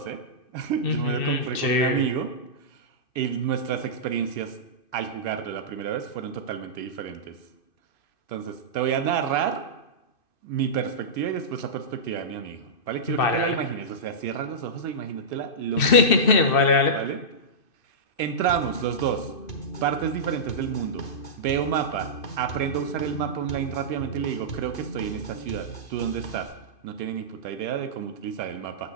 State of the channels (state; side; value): late; right; 2.6 ms